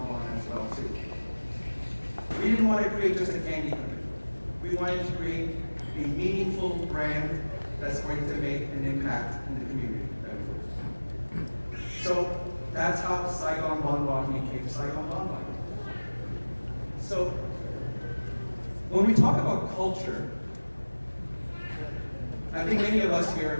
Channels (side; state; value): both; inverted; correlation -1.00